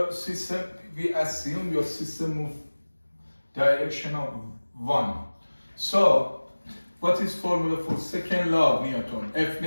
system, we assume your system move direction of 1. So what is formula for second law of Newton? F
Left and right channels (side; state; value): both; inverted; correlation -1.00